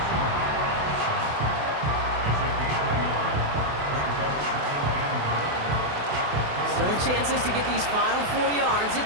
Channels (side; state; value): left; late; 28 ms